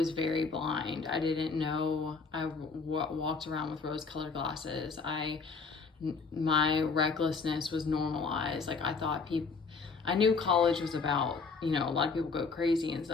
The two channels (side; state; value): right; quieter; 4.7 dB